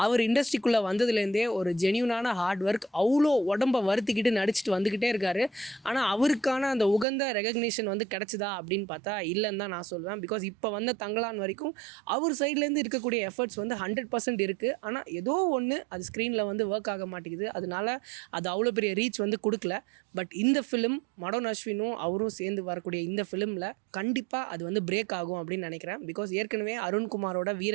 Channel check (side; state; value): left; drops out; at 7.1 s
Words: அவர் இண்டஸ்ட்ரிக்குள்ளே வந்ததுலேருந்தே ஒரு ஜென்யூனான ஹார்ட் ஒர்க், அவ்வளோ உடம்பை வருத்திக்கிட்டு நடிச்சுட்டு வந்துக்கிட்டே இருக்காரு. ஆனால் அவருக்கான அந்த உகந்த ரெகக்னிஷன் வந்து கிடச்சிதா அப்படின்னு பார்த்தா இல்லைன்னு தான் நான் சொல்வேன். பிகாஸ் இப்போ வந்த தங்கலான் வரைக்கும் அவர் சைட்லேருந்து இருக்கக்கூடிய எஃபர்ட்ஸ் வந்து 100% இருக்குது. ஆனால் ஏதோ ஒன்று அது ஸ்க்ரீனில் வந்து ஒர்க் ஆக மாட்டேங்குது. அதனால அது அவ்வளோ பெரிய ரீச் வந்து கொடுக்கல. பட் இந்த ஃபிலிம் மடோன் அஸ்வினும் அவரும் சேர்ந்து வரக்கூடிய இந்த ஃபிலிமில் கண்டிப்பாக அது வந்து பிரேக் ஆகும் அப்படின்னு நினைக்கிறேன். பிகாஸ் ஏற்கனவே அருண்குமாரோட